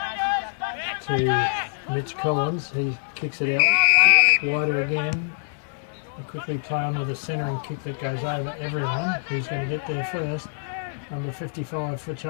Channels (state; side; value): silent; right; digital silence